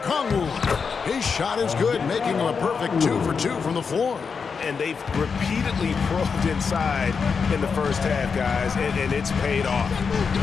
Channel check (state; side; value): quieter; right; 5.6 dB